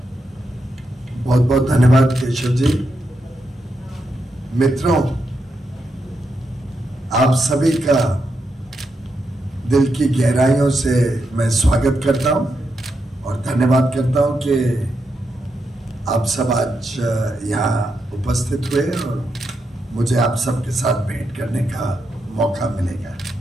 बहुत बहुत धन्यवाद केशव जी। मित्रों, आप सभी का दिल की गहराइयों से मैं स्वागत करता हूं और धन्यवाद करता हूं कि आप सब आज यहाँ उपस्थित हुए और मुझे आप सबके साथ भेंट करने का मौका मिलेगा।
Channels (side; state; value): both; normal; correlation 0.84